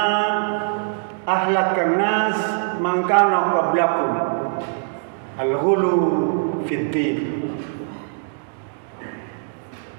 ahlakan nas man kana qablakum al-ghulu fid din.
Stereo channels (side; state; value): left; silent; digital silence